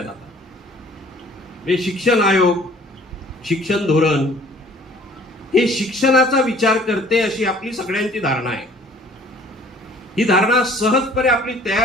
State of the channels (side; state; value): both; normal; correlation 0.54